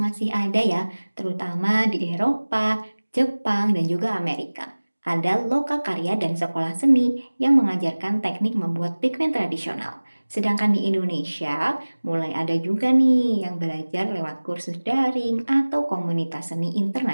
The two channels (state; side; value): inverted; both; correlation -1.00